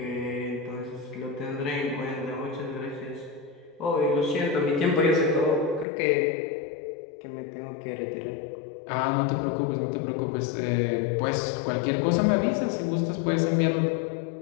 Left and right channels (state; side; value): drops out; right; at 5.9 s